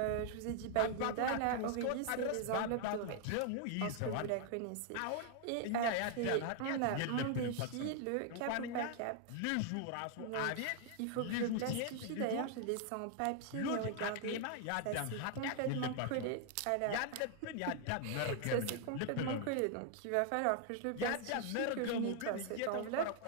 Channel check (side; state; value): both; different; correlation 0.00